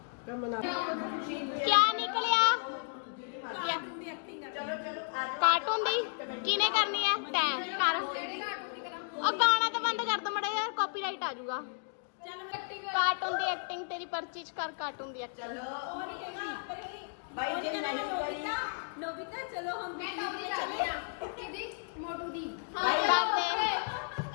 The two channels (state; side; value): silent; right; digital silence